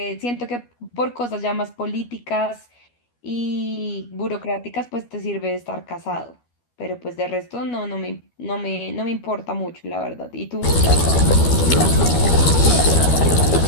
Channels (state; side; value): late; right; 12 ms